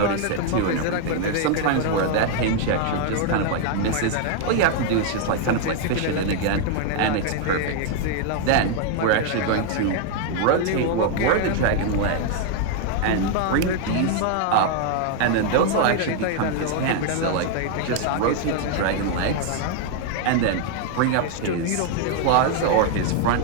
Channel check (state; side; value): different; both; correlation 0.00